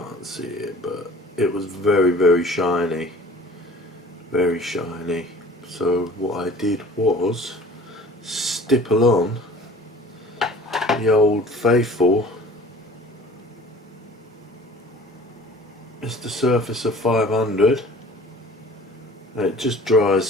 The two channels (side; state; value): both; normal; correlation 0.47